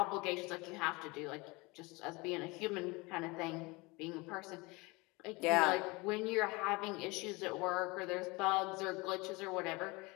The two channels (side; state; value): right; quieter; 24.8 dB